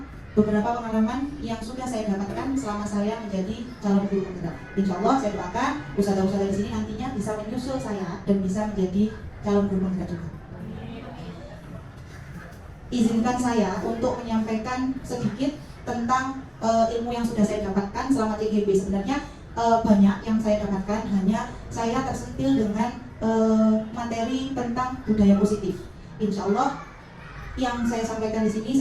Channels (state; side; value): identical; both; correlation 1.00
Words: beberapa pengalaman yang sudah saya dapatkan selama saya menjadi calon guru penggerak. Insya Allah saya doakan ustazah-ustazah di sini nantinya bisa menyusul saya dan bisa menjadi calon guru penggerak juga. Izinkan saya untuk menyampaikan sedikit tentang ilmu yang sudah saya dapatkan selama TGB. Sebenarnya banyak yang saya dapatkan, hanya saya tersentil dengan materi tentang budaya positif. Insya Allah yang saya sampaikan di sini